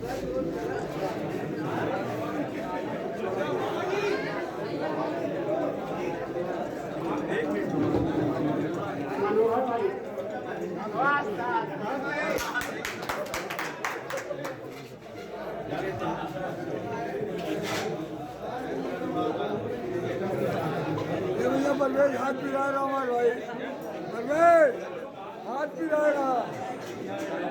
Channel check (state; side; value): identical; both; correlation 1.00